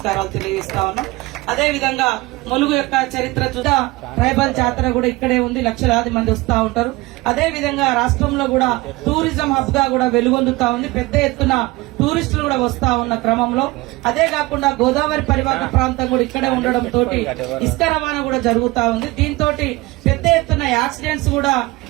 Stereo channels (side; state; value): left; quieter; 21.2 dB